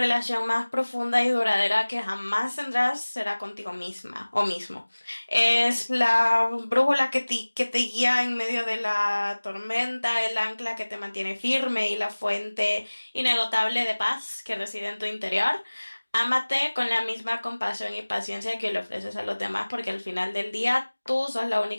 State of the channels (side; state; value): both; inverted; correlation -1.00